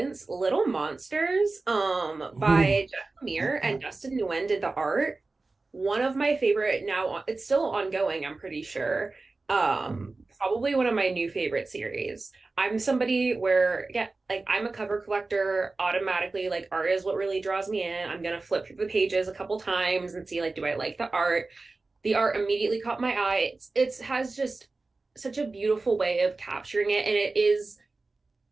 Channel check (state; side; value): quieter; left; 3.5 dB